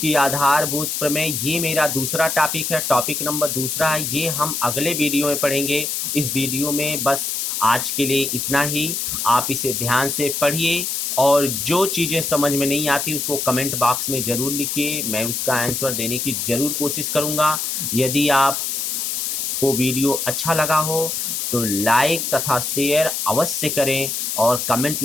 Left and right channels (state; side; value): noise; left; hiss, 2 dB below the sound